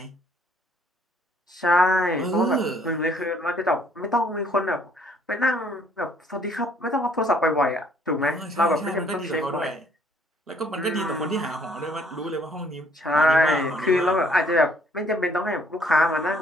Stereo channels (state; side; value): normal; both; correlation 0.63